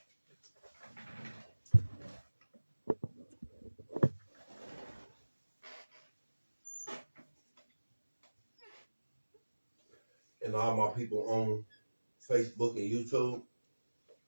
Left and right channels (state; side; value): inverted; both; correlation -1.00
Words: And all my people on Facebook and YouTube,